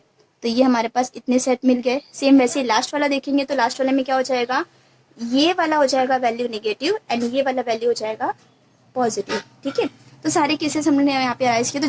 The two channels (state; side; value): identical; both; correlation 1.00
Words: तो ये हमारे पास इतने सेट मिल गए। सेम वैसे लास्ट वाला देखेंगे तो लास्ट वाले में क्या हो जाएगा, ये वाला हो जाएगा वैल्यू नेगेटिव एंड ये वाला वैल्यू हो जाएगा पॉजिटिव। ठीक है, तो सारे केसेस हमने यहाँ पे अराइज किए, तो